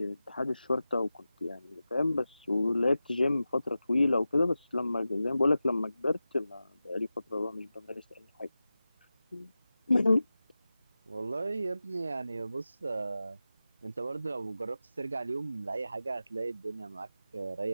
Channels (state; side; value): inverted; both; correlation -0.93